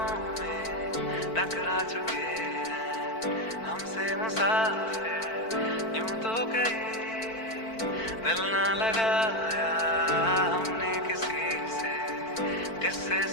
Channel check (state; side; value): late; right; 4.5 ms